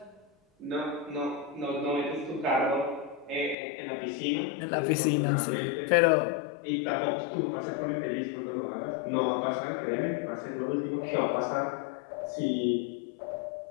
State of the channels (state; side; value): drops out; right; at 3.6 s